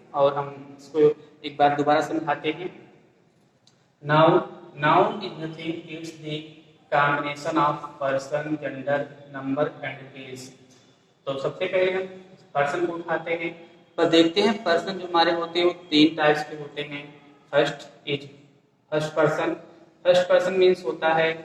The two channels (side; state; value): both; identical; correlation 1.00